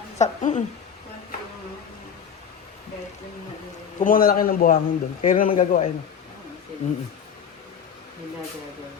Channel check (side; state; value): right; quieter; 7.5 dB